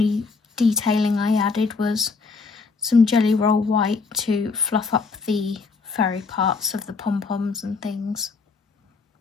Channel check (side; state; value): right; quieter; 4.5 dB